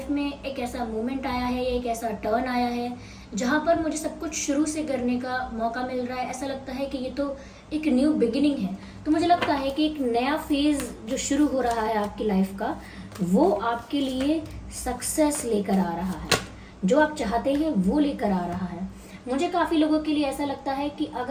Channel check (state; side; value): identical; both; correlation 1.00